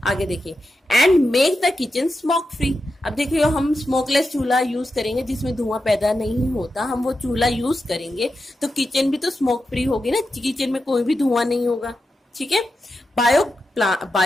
देखिए, and make the kitchen smoke free. अब देखिए, हम स्मोकलेस चूल्हा यूज करेंगे जिसमें धुआं पैदा नहीं होता, हम वो चूल्हा यूज करेंगे तो किचन भी तो स्मोक फ्री होगी ना, किचन में कोई भी धुआं नहीं होगा। ठीक है,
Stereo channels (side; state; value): both; normal; correlation 0.89